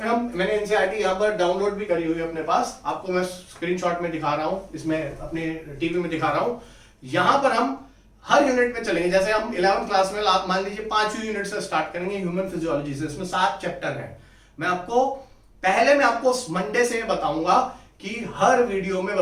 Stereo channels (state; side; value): identical; both; correlation 1.00